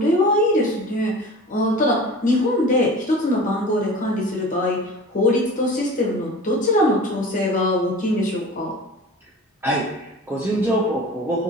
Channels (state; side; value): normal; both; correlation 0.39